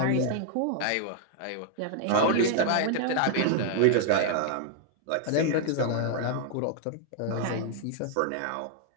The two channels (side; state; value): both; different; correlation 0.00